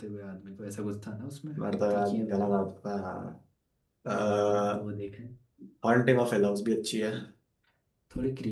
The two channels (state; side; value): identical; both; correlation 1.00